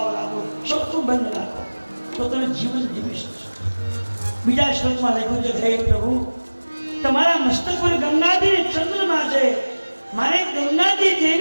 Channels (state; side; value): inverted; both; correlation -1.00